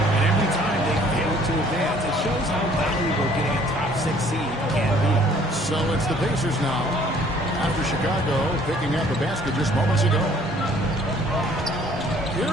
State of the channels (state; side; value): normal; both; correlation 0.58